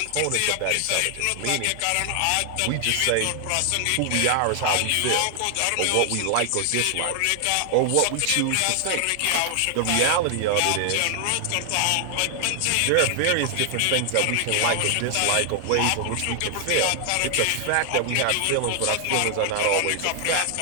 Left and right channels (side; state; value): both; different; correlation 0.00